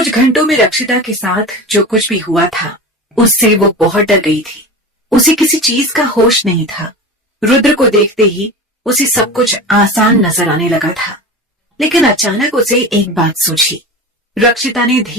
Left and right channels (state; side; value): normal; both; correlation 0.30